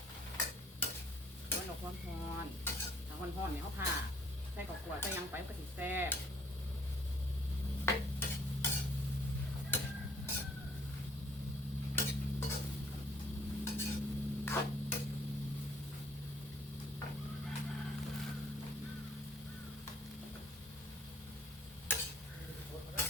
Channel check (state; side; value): normal; both; correlation 0.60